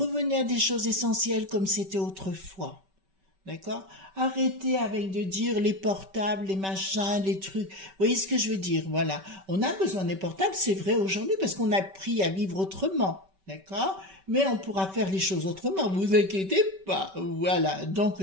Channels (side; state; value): left; late; 5.2 ms